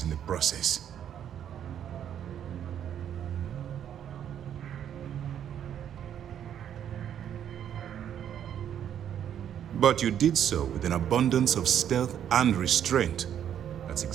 in the process. But you did so with an abundance of stealth and restraint. That's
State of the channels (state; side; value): quieter; left; 9.6 dB